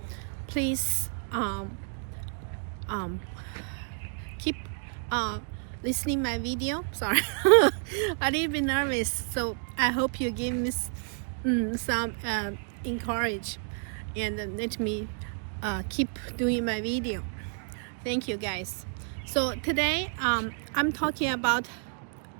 please keep listening my video. Sorry, a little bit nervous, so I hope you give me some encourage and let me keep doing my video. Thank you guys. So today I'm talking about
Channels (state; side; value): silent; left; 58 dB below the other